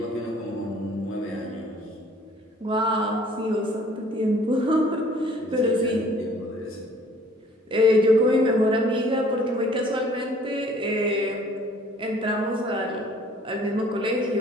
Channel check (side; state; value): both; normal; correlation 0.55